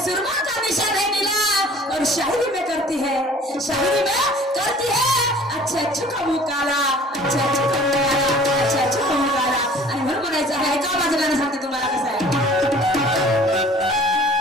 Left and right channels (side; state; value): both; normal; correlation 0.50